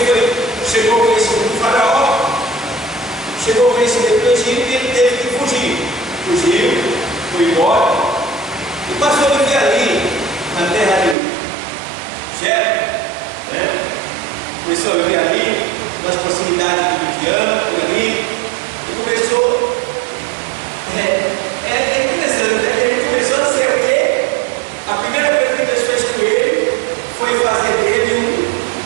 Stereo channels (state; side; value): drops out; left; at 11.2 s